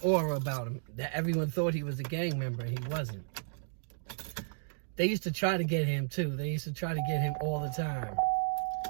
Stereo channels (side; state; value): left; silent; digital silence